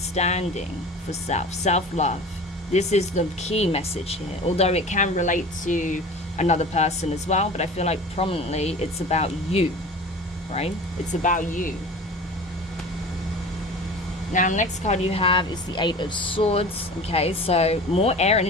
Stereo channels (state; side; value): normal; both; correlation 0.38